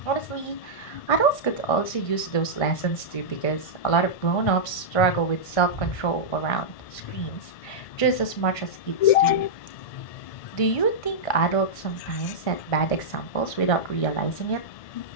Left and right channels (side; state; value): right; late; 1.5 ms